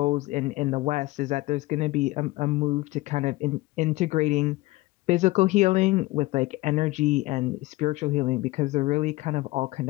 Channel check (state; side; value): quieter; right; 19.9 dB